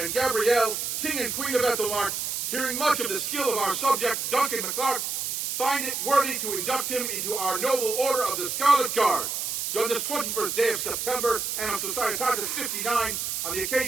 and Gabrielle, King and Queen of Aethelmearc, hearing much of the skill of our subject, Duncan MacLeod, find it worthy to induct him into our noble Order of the Scarlet Guard, done this 21st day of September, Anno Societatis 59, on the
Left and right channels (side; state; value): right; noise; hiss, 2 dB below the sound